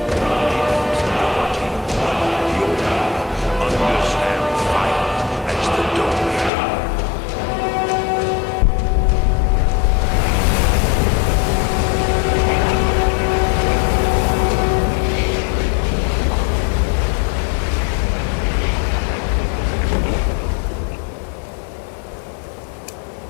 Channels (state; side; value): drops out; right; at 6.5 s